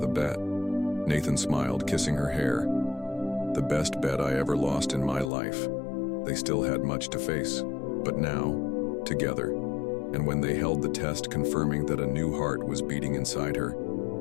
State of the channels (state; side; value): drops out; right; at 5.3 s